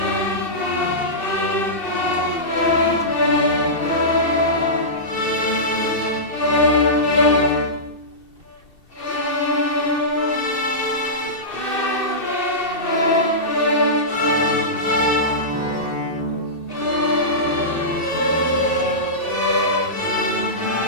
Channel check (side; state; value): right; late; 2.7 ms